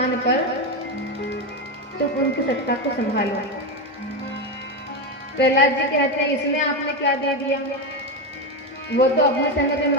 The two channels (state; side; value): normal; both; correlation 0.13